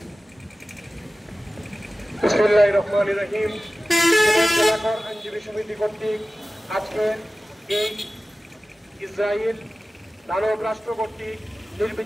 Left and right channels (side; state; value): both; normal; correlation 0.96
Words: বিসমিল্লাহির রহমানির রহিম। সিলেট জেলা কোর আইনজীবী সমিতি কর্তৃক আজকের এই ইসরায়েল দানব রাষ্ট্র কর্তৃক